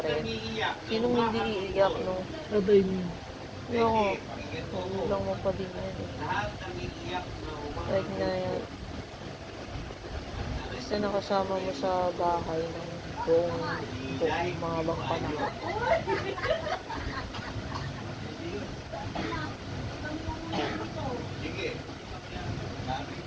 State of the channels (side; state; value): both; identical; correlation 1.00